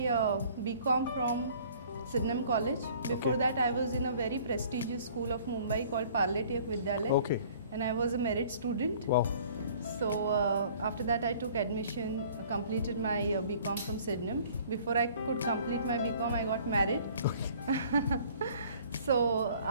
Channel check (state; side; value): inverted; both; correlation -0.53